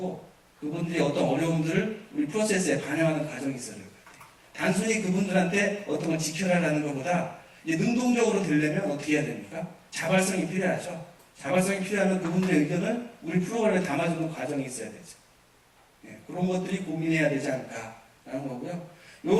그분들의 어떤 어려움들을 우리 프로세스에 반영하는 과정이 있어야 될 것 같아요. 단순히 그분들한테 어떤 걸 지켜라라는 것보다 이제 능동적으로 되려면 어떻게 해야 됩니까? 자발성이 필요하죠. 자발성이 필요하면 그분들의 의견을 우리 프로그램에 담아주는 과정이 있어야 되죠. 예, 그런 것들이 고민해야 되지 않을까라는 거고요.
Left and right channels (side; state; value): both; identical; correlation 1.00